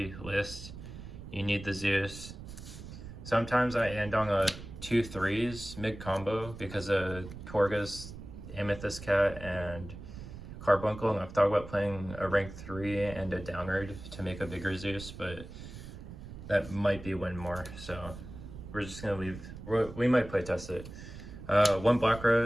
list, you need the Zeus. Sometimes I end on a 2 3s mid combo because of Torgus, Amethyst Cat, and Carbuncle, and I've thought about playing a rank 3 and a downward to make a bigger Zeus, but that might be win more, so we're just gonna leave. We might play test it. One Black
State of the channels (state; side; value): noise; right; rumble, 12 dB below the sound